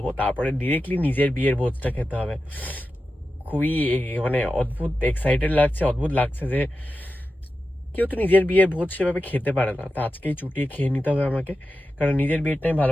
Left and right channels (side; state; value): both; normal; correlation 0.91